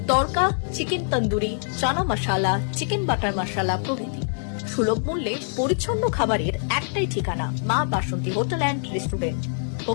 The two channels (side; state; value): right; silent; digital silence